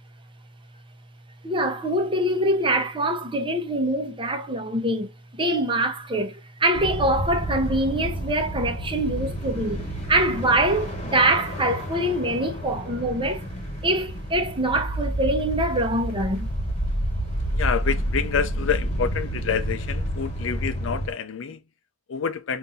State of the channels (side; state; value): both; normal; correlation 0.15